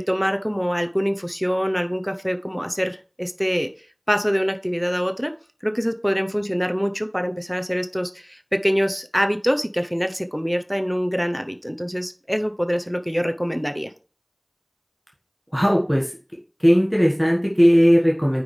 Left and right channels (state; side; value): identical; both; correlation 1.00